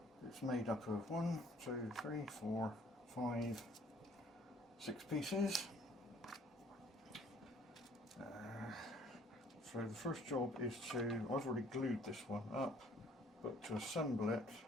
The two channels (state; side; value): normal; both; correlation 0.59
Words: It's made up of 1, 2, 3, 4, 5, 6 pieces. So the first job is I've already glued this one up, but to assemble it